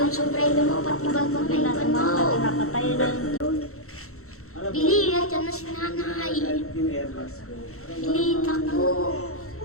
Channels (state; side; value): late; right; 0.63 ms